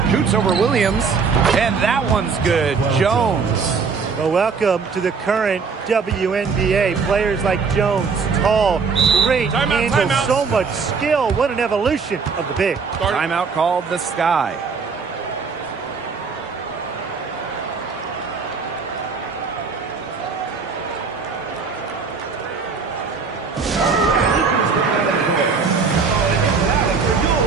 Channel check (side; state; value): left; quieter; 5.2 dB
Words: Shoots over Williams, and that one's good. Jones. Well, welcome to the current WNBA. Players like Jones, tall, great handle, so much skill. What an evolution of the big. Timeout called the Sky.